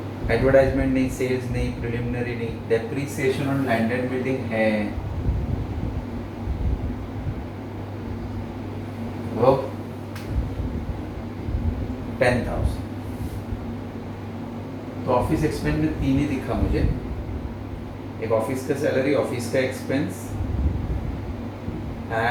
एडवर्टाइजमेंट नहीं, सेल्स नहीं, प्रिलिमिनरी नहीं, depreciation on land and building है वो 10,000। तो ऑफिस एक्सपेंस में 3 ही दिखा मुझे, एक ऑफिस का सैलरी, ऑफिस का expense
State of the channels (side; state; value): both; identical; correlation 1.00